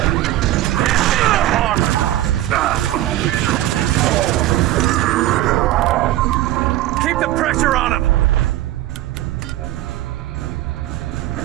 Keep the pressure on him!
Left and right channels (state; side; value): quieter; left; 14.8 dB